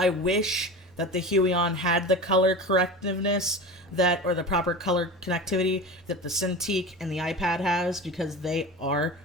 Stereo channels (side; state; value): both; normal; correlation 0.30